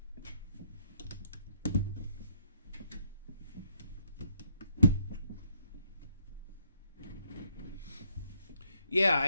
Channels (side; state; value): both; inverted; correlation -0.72